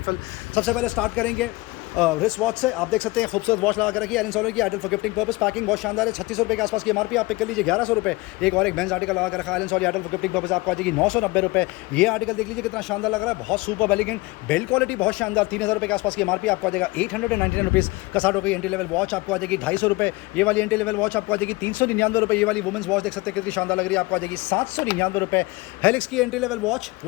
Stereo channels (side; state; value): right; quieter; 22.8 dB